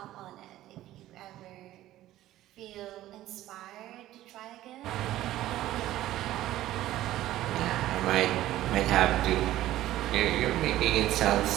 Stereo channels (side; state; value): left; quieter; 14.5 dB